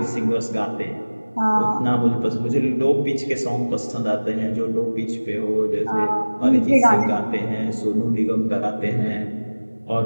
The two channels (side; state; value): both; inverted; correlation -1.00